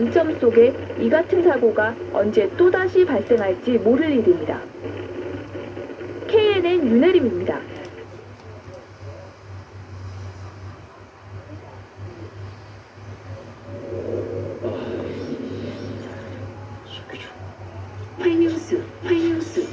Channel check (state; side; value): identical; both; correlation 1.00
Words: 속에 이 같은 사고가 언제 또다시 발생할지 모를 일입니다. KNN 윤혜림입니다. 활명수.